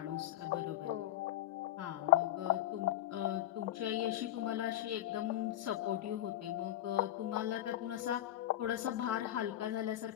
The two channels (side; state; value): right; quieter; 13.2 dB